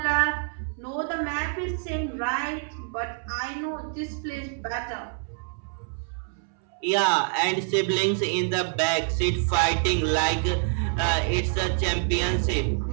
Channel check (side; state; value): left; silent; 61 dB below the other